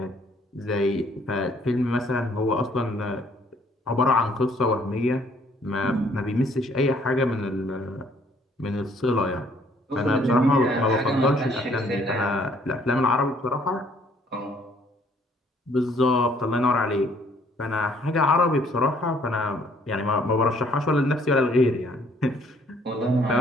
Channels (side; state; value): both; normal; correlation 0.63